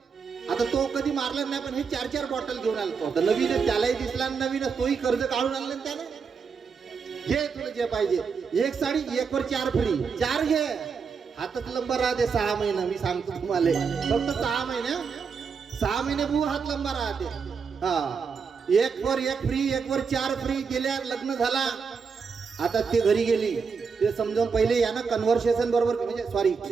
आता तो कधी मारला नाही, पण हे 4-4 बॉटल घेऊन आला तो. नवीन त्यालाही दिसला, नवीन तोही कर्ज काढून आणलं त्याने. घे तुला जे पाहिजे, एक साडी 1 वर 4 फ्री, 4 घे. हातच लंबा राहते 6 महिने. मी सांगतो तुम्हाला, फक्त 6 महिने, 6 महिने बू हात लंबा राहते. हा 1 वर 1 फ्री, 1 वर 4 फ्री गेल्या. लग्न झाला, आता ते घरी गेली. ते समजावून पहिले यानं कन्व्हर्सेशन बरोबर, म्हणजे सॉरी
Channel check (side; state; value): left; quieter; 5.7 dB